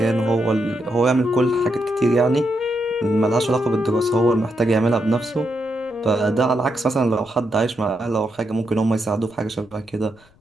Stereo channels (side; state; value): left; noise; rumble, 30 dB below the sound